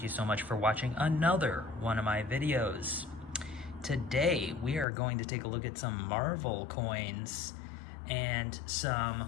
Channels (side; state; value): right; drops out; at 4.9 s